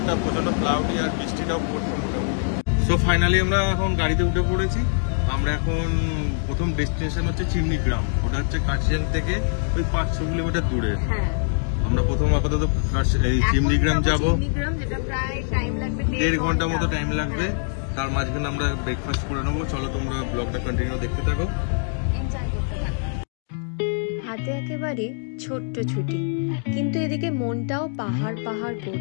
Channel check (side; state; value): right; silent; digital silence